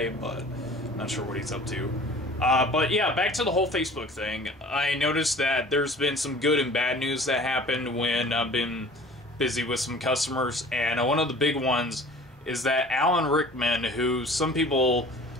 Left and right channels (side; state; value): both; normal; correlation 0.46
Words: but I'm not sure what he's up to. But yeah, back to the whole Facebook thing. I noticed that there's been some good and bad news that happened when I've been busy with some customers, and one of the big ones is that Alan Rickman, who some people